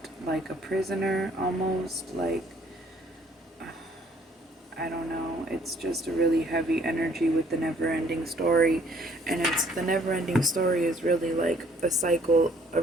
like a prisoner almost, like I don't know. It's just a really heavy energy with the never ending story. And it's the never ending story is really like a cycle, a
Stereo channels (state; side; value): normal; both; correlation 0.61